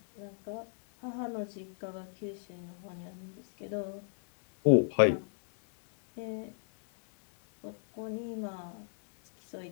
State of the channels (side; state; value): right; silent; 55 dB below the other